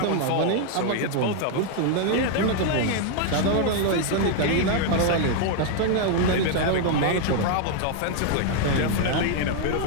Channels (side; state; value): both; different; correlation 0.00